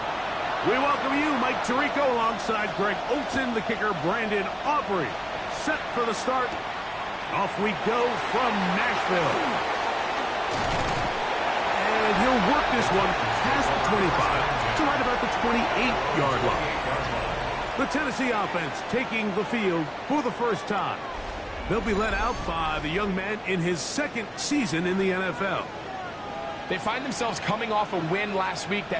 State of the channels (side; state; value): both; identical; correlation 1.00